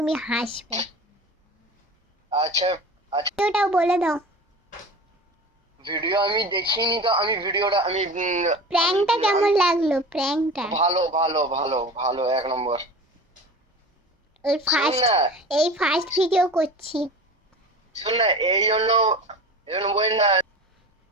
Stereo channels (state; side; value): normal; both; correlation 0.34